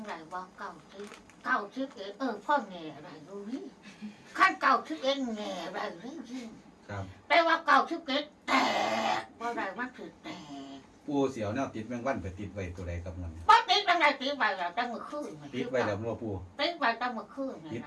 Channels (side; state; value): both; identical; correlation 1.00